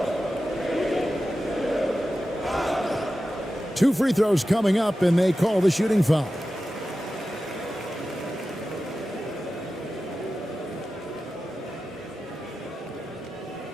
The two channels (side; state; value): both; normal; correlation 0.93